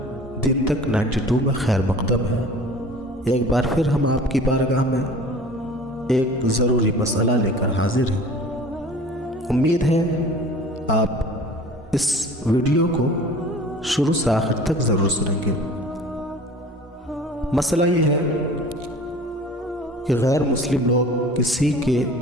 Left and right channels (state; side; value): normal; both; correlation 0.44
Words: دن تک 92 میں خیر مقدم ہے۔ ایک بار پھر ہم آپ کی بارگاہ میں ایک ضروری مسئلہ لے کر حاضر ہیں۔ امید ہے آپ اس ویڈیو کو شروع سے آخر تک ضرور سنیں گے۔ مسئلہ یہ ہے کہ غیر مسلم لوگ کسی کے